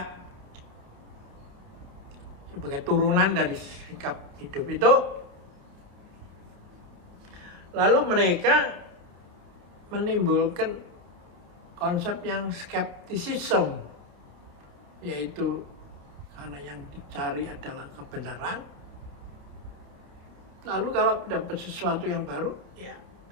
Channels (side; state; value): left; late; 29 ms